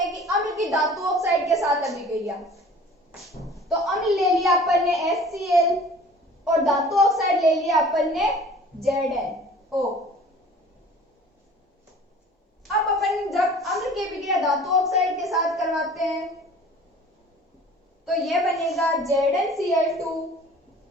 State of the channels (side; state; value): both; normal; correlation 0.47